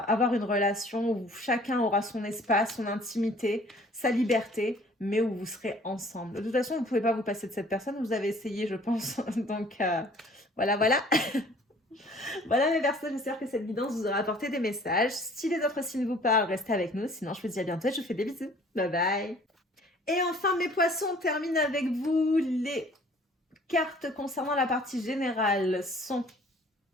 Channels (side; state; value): both; normal; correlation 0.53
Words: une relation où chacun aura son espace, son intimité, sa liberté, mais où vous serez ensemble. De toute façon, vous ne pouvez pas vous passer de cette personne. Vous avez essayé, je pense. Donc, voilà. Voilà mes Verseaux, j'espère que cette vidéo vous aura apporté des messages. Si les autres signes vous parlent, restez avec nous. Sinon, je vous dis à bientôt et je vous fais des bisous. Bye bye. Et enfin, mes poissons, on termine avec vous. Les cartes concernant la partie générale sont...